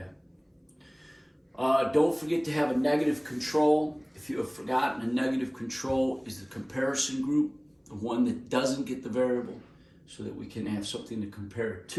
Don't forget to have a negative control. If you have forgotten, a negative control is the comparison group, the one that doesn't get the variable, so that we can have something to compare it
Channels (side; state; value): both; identical; correlation 1.00